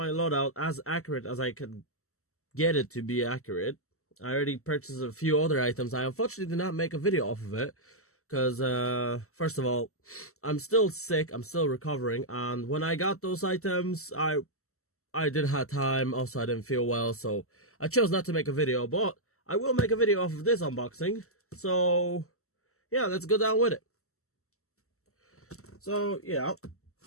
loadout as accurate as I can get it to be accurate. I already purchased a few other items. I unfortunately did not make a video off of it because, first of all, I'm still sick. I'm still recovering, and when I got those items, I didn't have time. Also, I didn't feel well, so I chose not to make a video. But I will make a video off of this unboxing. So yeah, let's go down with it. So yeah,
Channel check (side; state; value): right; late; 0.63 ms